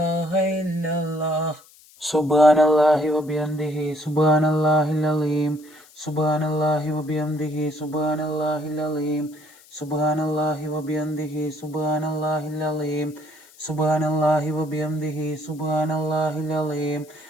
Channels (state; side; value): noise; left; hiss, 26 dB below the sound